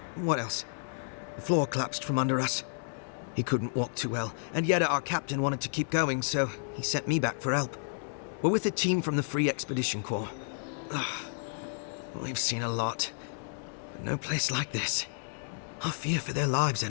What else? The floor collapsed from under us. He couldn't walk too well, and yet our captain wanted to keep going, so he sent me back for help. We're with a team from the Free Expedition Corps. We've seen a lot, but no place like this. I fear for their lives,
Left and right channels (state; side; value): silent; right; 57 dB below the other